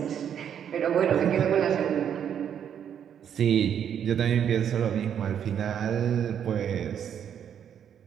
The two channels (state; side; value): quieter; left; 8.8 dB